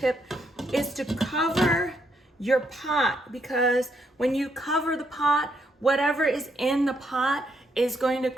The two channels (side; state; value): both; normal; correlation 0.76